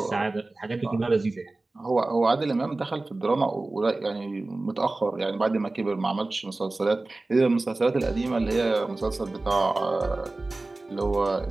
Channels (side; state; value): left; quieter; 3.1 dB